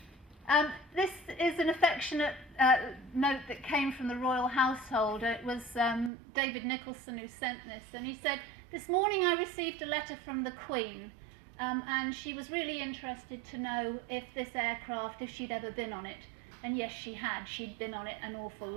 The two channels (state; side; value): drops out; left; at 6.1 s